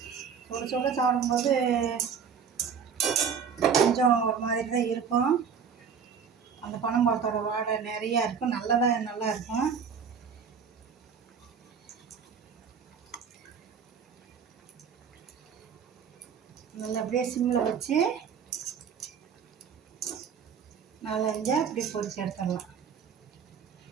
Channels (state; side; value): quieter; left; 6.8 dB